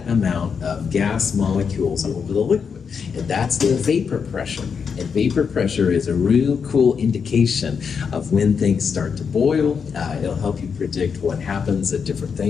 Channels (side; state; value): right; quieter; 6.3 dB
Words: amount of gas molecules over the liquid. And that's the vapor pressure. And vapor pressure is a real cool indication of when things start to boil. It'll help you predict what happens at different